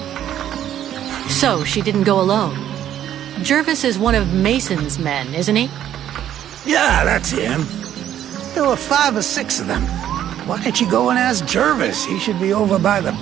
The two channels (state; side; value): quieter; left; 11.0 dB